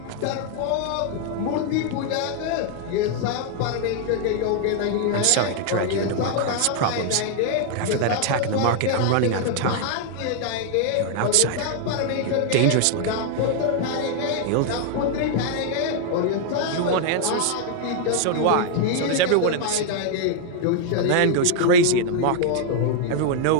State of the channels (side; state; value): both; different; correlation 0.00